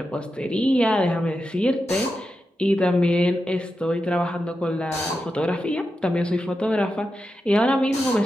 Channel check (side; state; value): both; normal; correlation 0.89